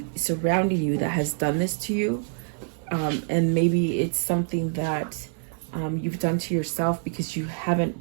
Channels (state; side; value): silent; left; 55 dB below the other